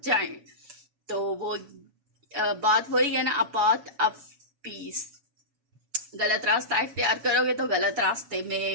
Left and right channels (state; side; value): late; left; 7.1 ms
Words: जाएं। तो वो बात वही है ना, अ पाथ ऑफ पीस। गलत रास्ता इख्तियार करोगे तो गलत रास्ते